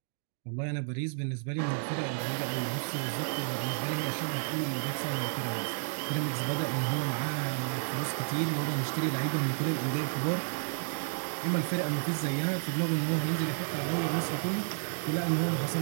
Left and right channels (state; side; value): silent; left; digital silence